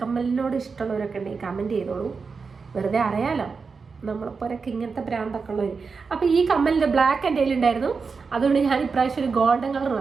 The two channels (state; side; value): quieter; left; 5.0 dB